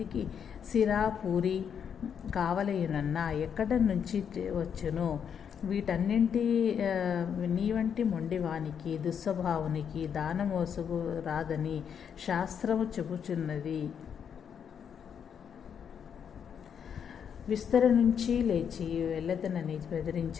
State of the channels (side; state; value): right; quieter; 7.7 dB